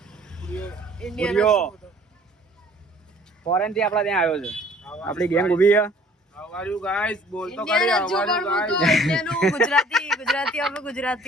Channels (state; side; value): normal; both; correlation 0.54